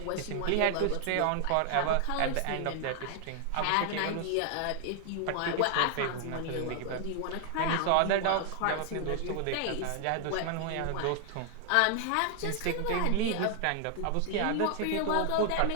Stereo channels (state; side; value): different; both; correlation 0.00